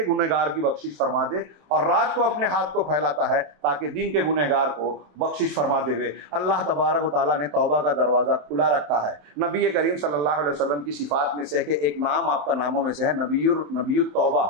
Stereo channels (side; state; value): left; late; 27 ms